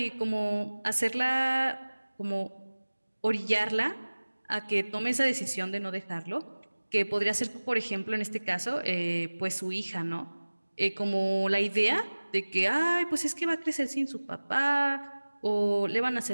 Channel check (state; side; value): inverted; both; correlation -1.00